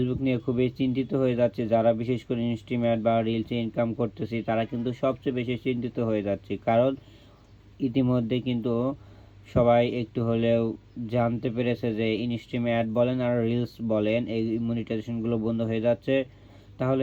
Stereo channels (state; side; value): identical; both; correlation 1.00